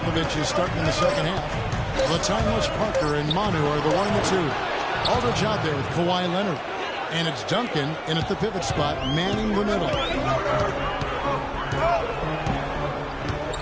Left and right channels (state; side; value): identical; both; correlation 1.00